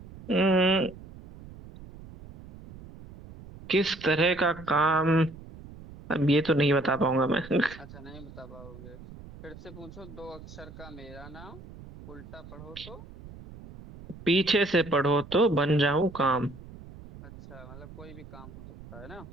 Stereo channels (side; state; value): right; noise; rumble, 17 dB below the sound